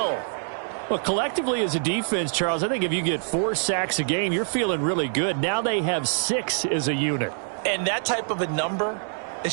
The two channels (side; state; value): left; silent; digital silence